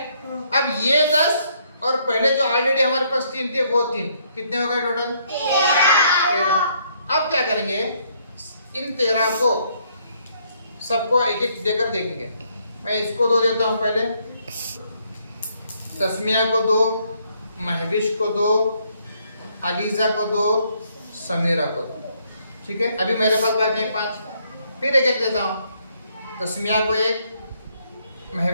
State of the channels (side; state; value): both; inverted; correlation -0.70